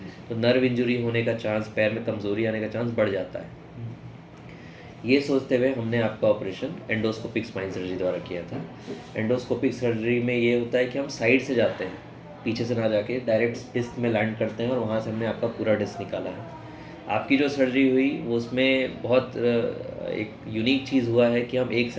तो नर्व इंजरी होने का चांस, पैर में कमज़ोरी आने का चांस बढ़ जाता है। ये सोचते हुए हमने आपका ऑपरेशन एंडोस्कोपिक स्पाइन सर्जरी द्वारा किया था। एंडोस्कोपिक सर्जरी में ये होता है कि हम साइड से जाते हैं, पीछे से ना जाके डायरेक्ट डिस्क में लैंड करते हैं और वहाँ से हमने आपका पूरा डिस्क निकाला है। आपकी जो सर्जरी हुई वो उसमें बहुत एक यूनिक चीज़ हुआ है कि हम एक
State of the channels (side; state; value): both; identical; correlation 1.00